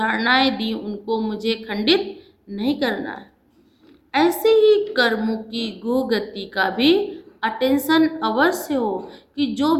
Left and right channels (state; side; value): identical; both; correlation 1.00